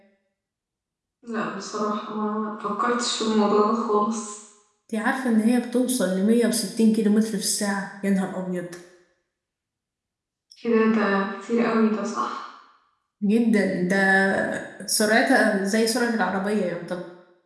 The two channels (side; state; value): both; identical; correlation 1.00